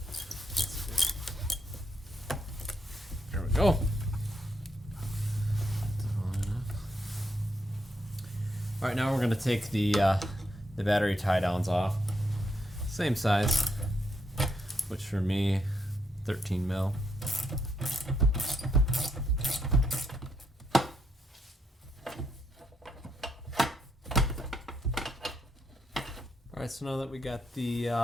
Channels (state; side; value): normal; both; correlation 0.78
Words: There we go. Alright, now we're going to take the battery tie downs off. Same size, which for me, 13 mil. Alright, so now that we got